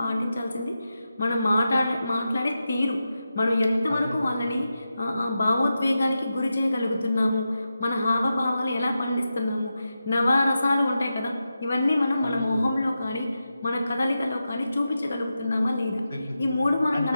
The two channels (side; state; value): both; inverted; correlation -0.90